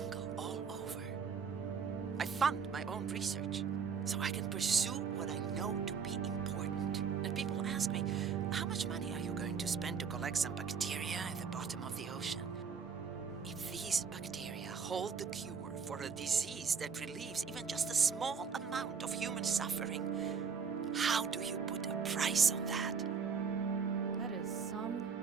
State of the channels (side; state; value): left; quieter; 6.1 dB